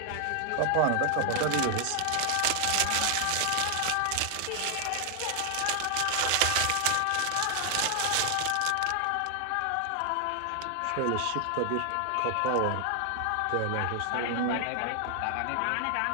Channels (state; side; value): different; both; correlation 0.00